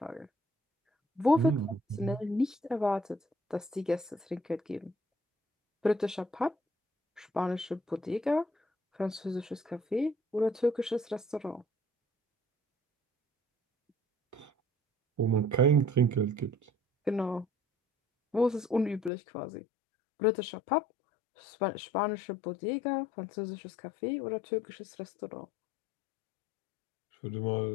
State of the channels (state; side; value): drops out; right; at 19.1 s